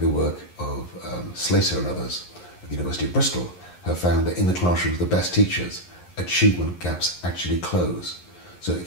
work of Slater and others at the University of Bristol, have found that in the classrooms of the best teachers, achievement gaps actually close. So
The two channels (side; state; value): right; late; 11 ms